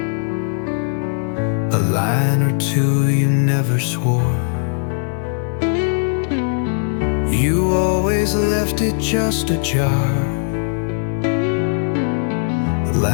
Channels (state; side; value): silent; right; digital silence